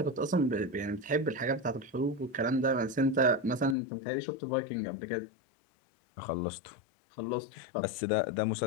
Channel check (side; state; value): right; drops out; at 3.8 s